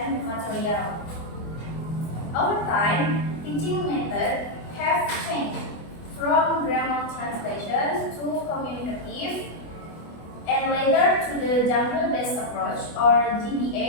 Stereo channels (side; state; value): right; late; 24 ms